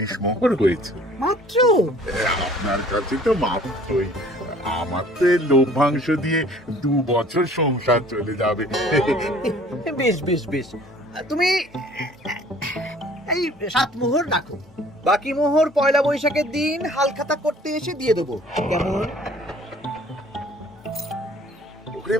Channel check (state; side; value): normal; both; correlation 0.53